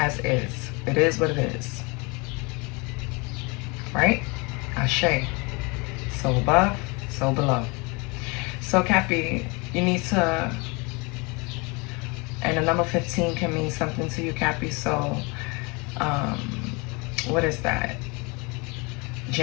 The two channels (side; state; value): right; quieter; 28.4 dB